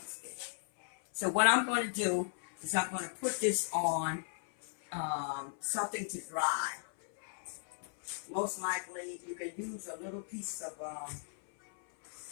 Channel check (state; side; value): silent; right; 53 dB below the other